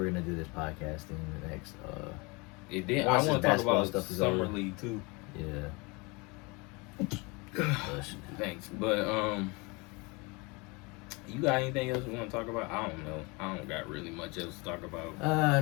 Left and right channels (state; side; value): quieter; right; 27.6 dB